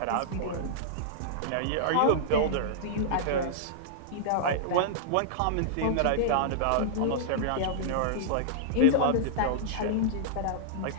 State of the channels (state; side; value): different; both; correlation -0.02